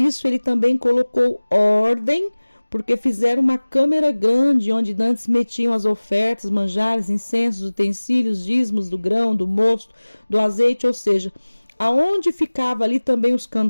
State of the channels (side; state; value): both; inverted; correlation -1.00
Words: ele também colocou ordem, porque fizeram uma câmara grande onde antes metiam as ofertas, manjares, incensos, utensílios, dízimos do grão, do mosto, do azeite, ou seja, aonde ficava ali também os